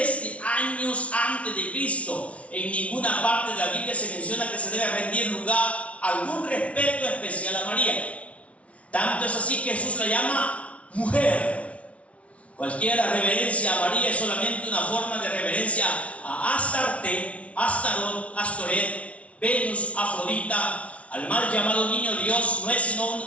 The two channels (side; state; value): right; late; 0.064 ms